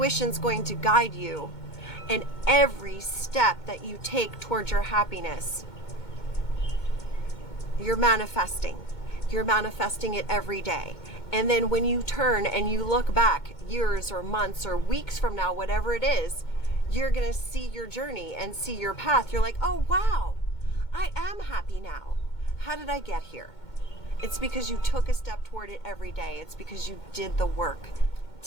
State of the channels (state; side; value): late; right; 2.2 ms